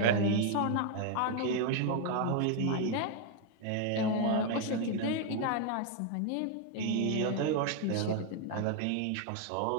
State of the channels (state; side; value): different; both; correlation 0.01